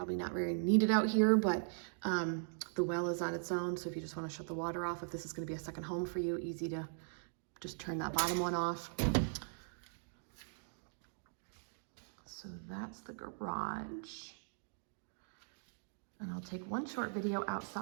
not very needed out here, but the well is on its own. So if you just want to shut the water off, if this is going to be a second home for you, easy to just turn that bottom one off. So that's the garage. And I'll take one short video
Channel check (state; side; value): silent; left; digital silence